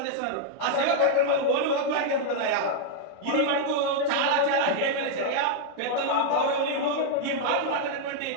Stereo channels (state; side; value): different; both; correlation -0.01